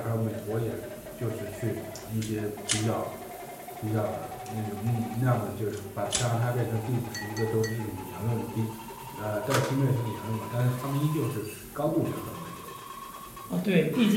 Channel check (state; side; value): identical; both; correlation 1.00